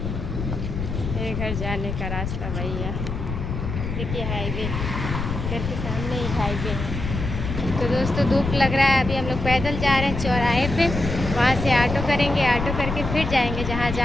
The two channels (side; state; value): left; noise; rumble, 4 dB below the sound